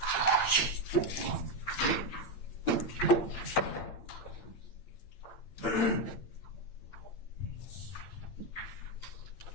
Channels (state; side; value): late; right; 8.8 ms